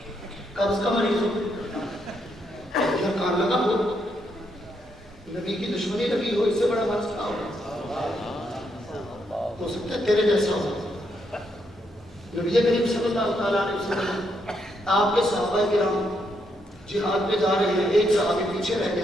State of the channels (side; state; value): both; normal; correlation 0.77